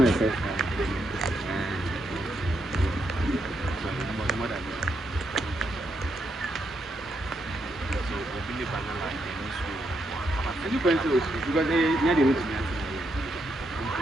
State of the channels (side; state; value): both; normal; correlation 0.80